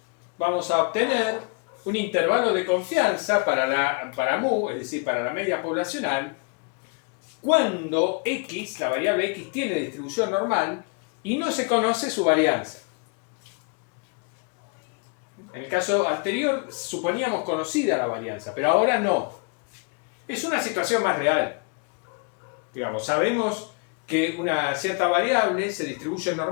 vamos a obtener un intervalo de confianza para mu, es decir, para la media poblacional, cuando x, la variable x, tiene distribución normal y no se conoce su varianza. En el caso anterior suponíamos conocida la varianza, pero ahora no. Es una situación más real. Digamos, sabemos que una cierta variable se distribuye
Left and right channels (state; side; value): quieter; right; 33.7 dB